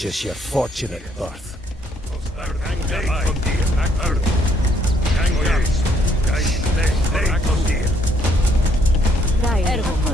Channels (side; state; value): both; normal; correlation 0.69